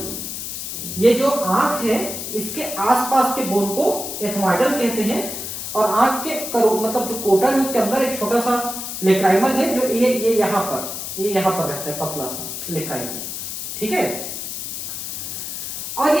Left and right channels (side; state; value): left; noise; hiss, 6 dB below the sound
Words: ये जो आंख है इसके आसपास के बोन को एथमॉइडल कहते हैं, और आंख के मतलब जो कोटर है उसके अंदर एक छोटा सा लेक्राइमल है जो ये यहाँ पर रहता है, पतला सा लेक्राइमल, ठीक है। और